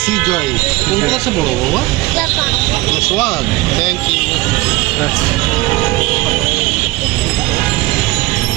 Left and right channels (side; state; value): left; quieter; 20.4 dB